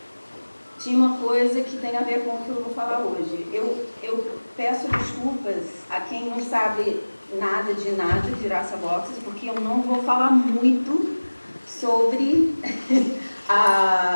tinha uma coisa que tem a ver com o que eu vou falar hoje. Eu peço desculpas a quem não sabe nada de Raça Boxes, porque eu não vou falar muito sobre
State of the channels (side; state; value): both; inverted; correlation -1.00